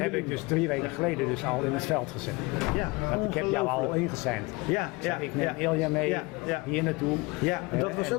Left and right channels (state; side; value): quieter; right; 24.7 dB